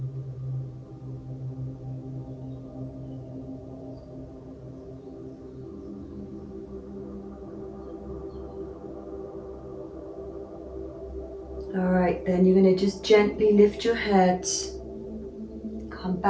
Alright, then you're going to just gently lift your head, come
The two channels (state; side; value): identical; both; correlation 1.00